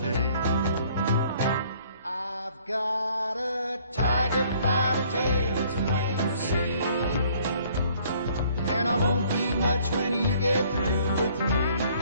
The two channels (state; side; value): inverted; both; correlation -0.59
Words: tail. I've got a tiger by the tail, it's plain to see, and I won't be much when you get through with me.